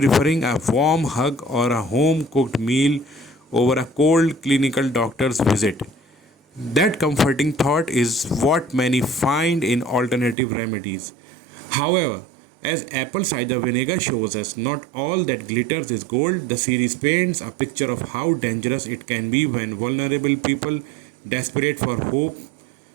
a warm hug or a home cooked meal over a cold clinical doctor's visit. That comforting thought is what many find in alternative remedies. However, as apple cider vinegar shows us, not all that glitters is gold. The series paints a picture of how dangerous it can be when vulnerable people, desperate for hope,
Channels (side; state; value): left; drops out; at 10.4 s